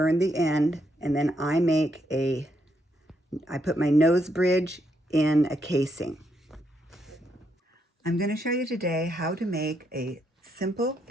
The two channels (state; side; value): normal; both; correlation 0.78